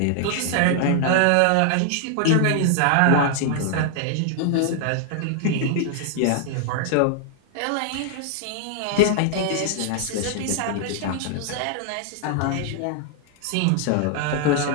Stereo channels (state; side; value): different; both; correlation 0.00